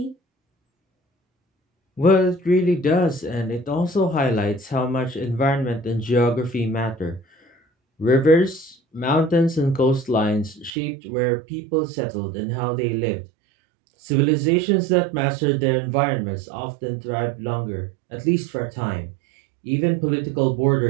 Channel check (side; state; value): left; drops out; at 10.7 s